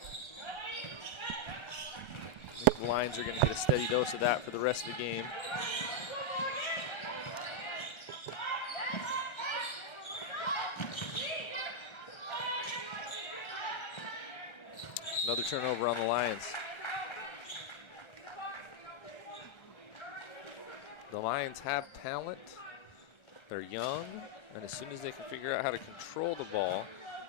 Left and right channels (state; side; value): late; right; 1.3 ms